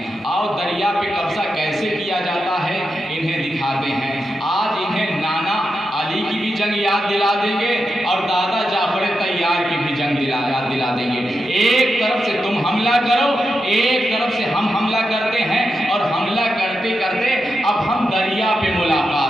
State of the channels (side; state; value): both; normal; correlation 0.87